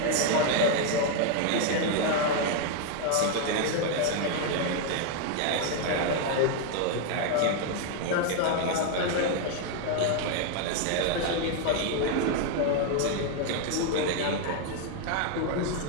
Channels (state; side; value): different; both; correlation 0.01